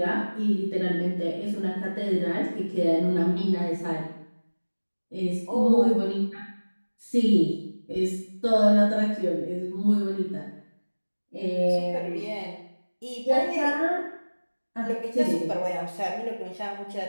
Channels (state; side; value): inverted; both; correlation -1.00